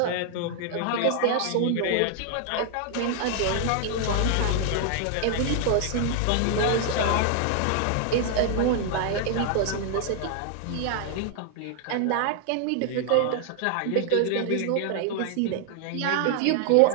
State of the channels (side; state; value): both; different; correlation 0.00